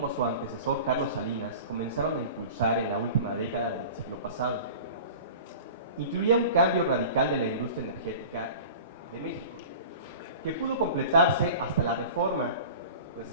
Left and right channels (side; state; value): both; inverted; correlation -0.39